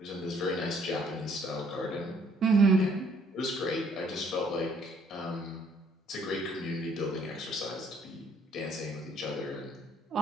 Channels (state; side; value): normal; both; correlation 0.64